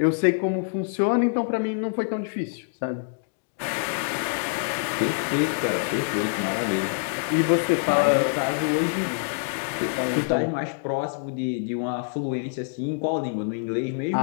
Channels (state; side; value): silent; right; digital silence